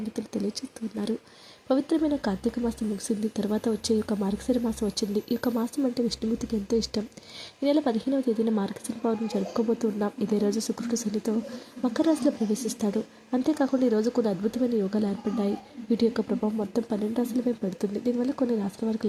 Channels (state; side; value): identical; both; correlation 1.00